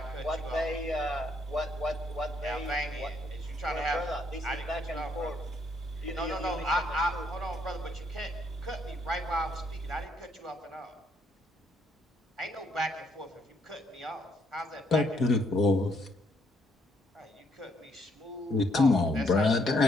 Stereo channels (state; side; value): normal; both; correlation 0.72